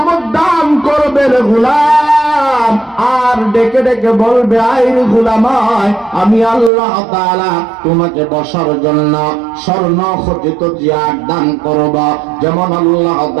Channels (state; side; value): drops out; left; at 6.7 s